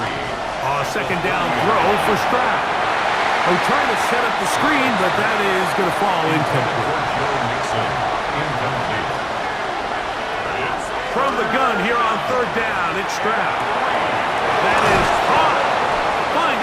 A 2nd down throw for Stroud. They're trying to set up the screen, but that is going to fall incomplete. From the gun here on 3rd down, it's Stroud. That is caught.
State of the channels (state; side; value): identical; both; correlation 1.00